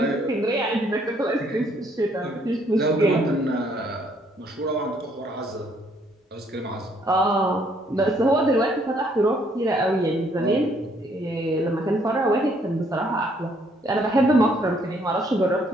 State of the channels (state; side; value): normal; both; correlation 0.67